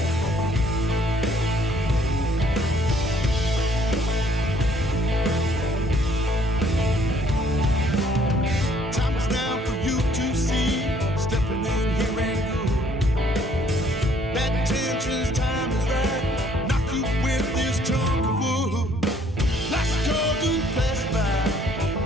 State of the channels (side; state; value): both; normal; correlation 0.62